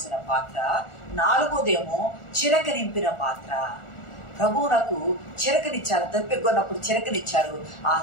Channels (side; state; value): right; late; 1.4 ms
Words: పాత్ర. 4వదేమో చిరక నింపిన పాత్ర, ప్రభువునకు చిరకనిచ్చారు, దప్పిగొన్నప్పుడు చిరకనిచ్చారు.